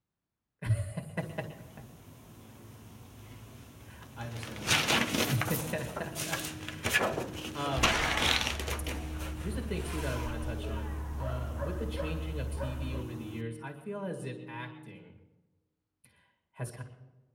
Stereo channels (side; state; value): both; identical; correlation 1.00